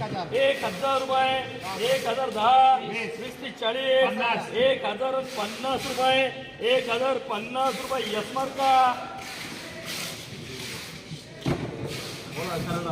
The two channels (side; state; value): both; identical; correlation 1.00